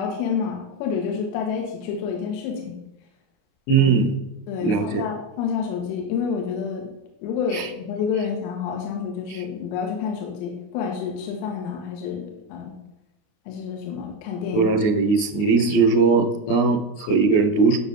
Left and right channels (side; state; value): right; late; 29 ms